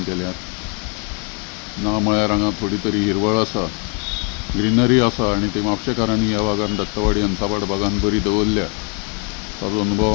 केल्यात. ना म्हळ्यार हांगा थोडी तरी हिरवळ आसा, ग्रीनरी आसा आनी ती म्हापशेकारांनी ह्या भागान दत्तवाडी हंसापाड भागान बरी दवरल्या. ताजो अनुभव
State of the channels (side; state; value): right; quieter; 36.1 dB